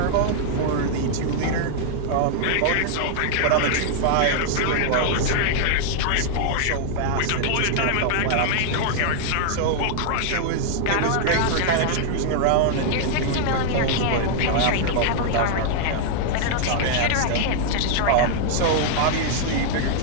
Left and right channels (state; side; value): different; both; correlation -0.01